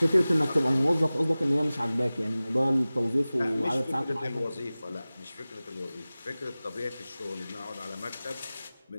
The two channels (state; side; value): inverted; both; correlation -0.98